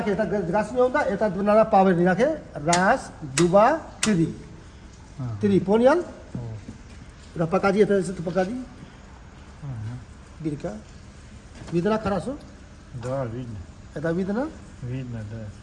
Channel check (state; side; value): identical; both; correlation 1.00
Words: ke eta gas me onda eta dunara power ni na ke ras duba tiri. Tiri ponial. Berapa kaji eta itu pakaji? Birka. Vidna kharaso? Да, видно. Это видно? Видно, да.